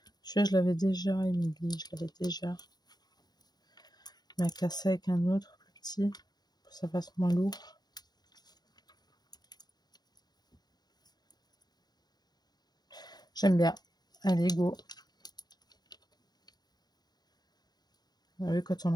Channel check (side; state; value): right; late; 0.19 ms